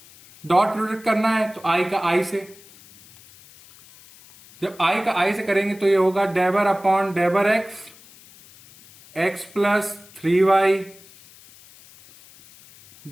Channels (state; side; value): noise; left; hiss, 24 dB below the sound